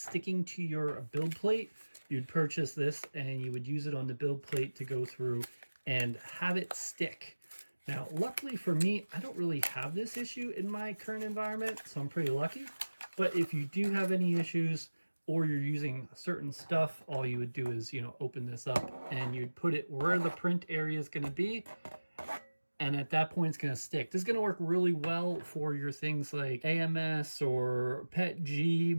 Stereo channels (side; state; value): both; inverted; correlation -1.00